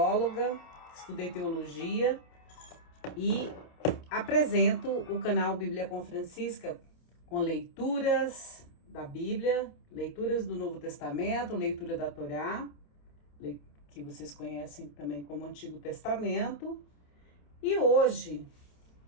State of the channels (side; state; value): right; late; 28 ms